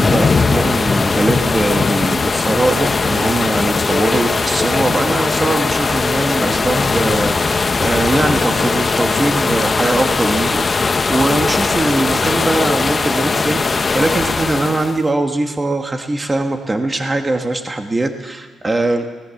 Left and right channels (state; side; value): normal; both; correlation 0.91